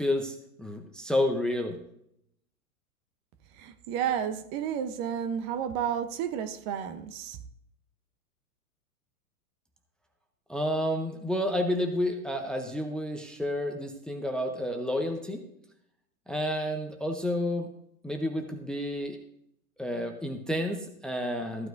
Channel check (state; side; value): normal; both; correlation 0.58